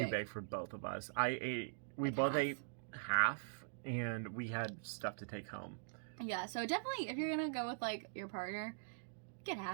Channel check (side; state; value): left; silent; digital silence